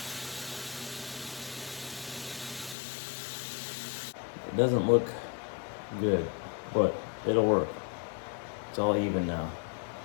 It doesn't look good, but it'll work. It's all even now.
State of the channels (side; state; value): right; drops out; at 2.8 s